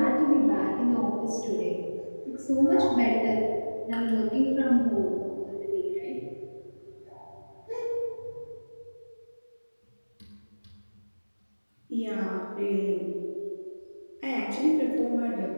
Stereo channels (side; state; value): both; inverted; correlation -1.00